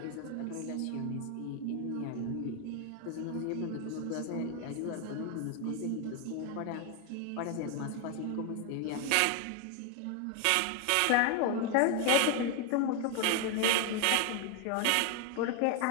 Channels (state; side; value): different; both; correlation 0.01